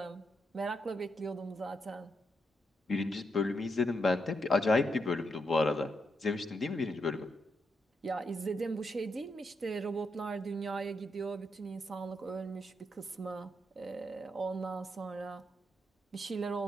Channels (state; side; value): normal; both; correlation 0.82